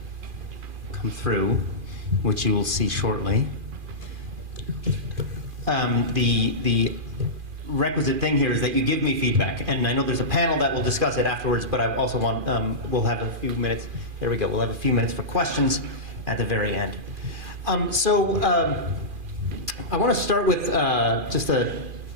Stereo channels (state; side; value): late; left; 2.4 ms